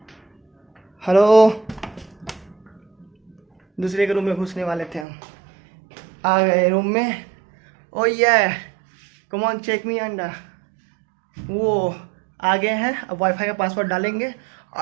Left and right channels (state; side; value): drops out; left; at 5.1 s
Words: हेलो, दूसरे के रूम में घुसने वाले थे हम, आ गए रूम में। ओ ये कम ऑन चेक मी अंडा, वो आगे हैं। अब वाईफाई का पासवर्ड डालेंगे